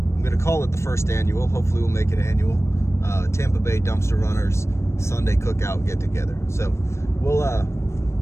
gonna call it the first annual, hopefully we'll make it annual, Tampa Bay Dumpster Runners Sunday cookout get together. So we'll,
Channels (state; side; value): late; right; 0.13 ms